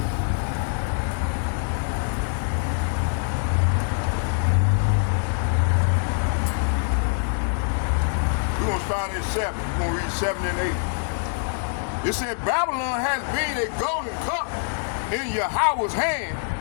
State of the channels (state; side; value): silent; right; 61 dB below the other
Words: We're going to start at 7. We're going to read 7 and 8. It said, Babylon has been a golden cup in Yahweh's hand